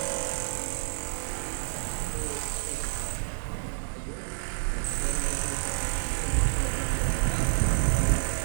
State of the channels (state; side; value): silent; left; digital silence